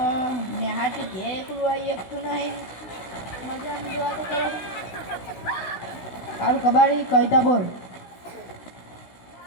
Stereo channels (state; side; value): late; right; 16 ms